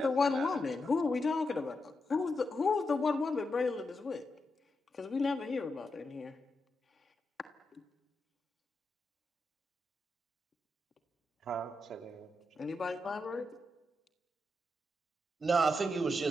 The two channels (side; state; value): both; normal; correlation 0.86